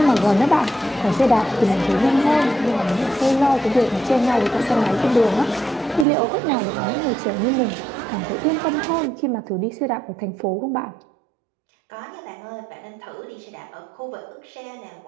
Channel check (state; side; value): drops out; left; at 6.1 s